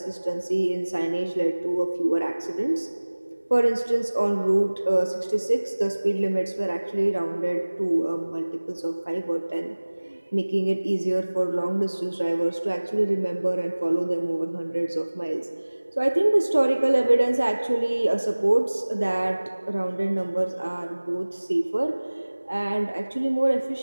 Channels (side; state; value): both; inverted; correlation -1.00